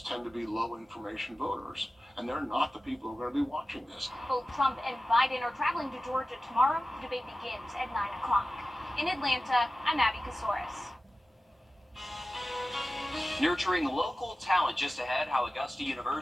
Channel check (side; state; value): both; normal; correlation 0.95